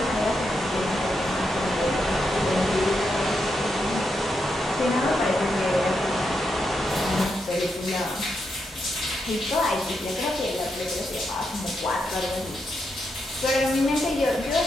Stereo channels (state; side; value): normal; both; correlation 0.83